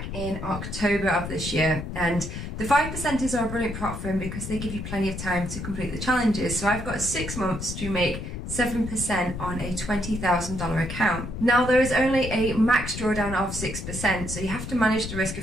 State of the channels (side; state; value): left; noise; rumble, 7 dB below the sound